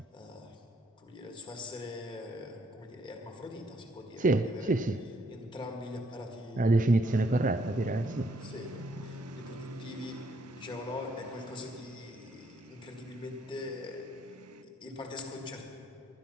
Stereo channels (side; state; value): both; normal; correlation 0.69